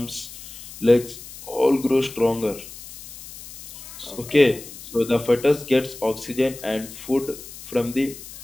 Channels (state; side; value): noise; left; hiss, 15 dB below the sound